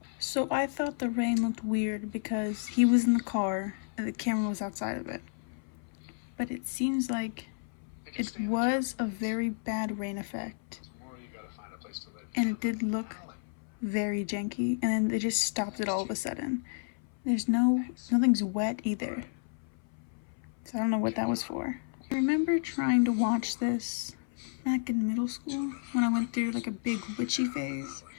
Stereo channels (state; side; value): silent; right; 57 dB below the other